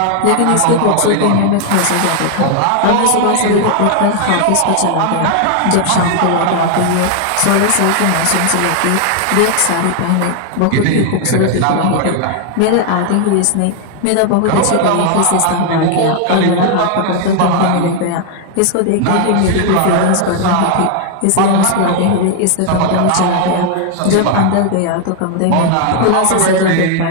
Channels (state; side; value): different; both; correlation 0.00